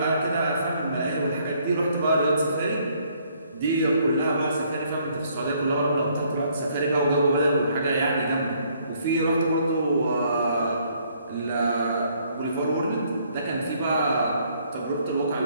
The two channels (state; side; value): inverted; both; correlation -0.66